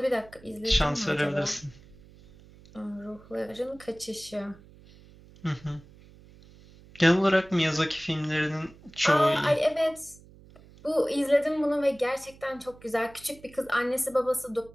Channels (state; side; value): noise; right; hum, 23 dB below the sound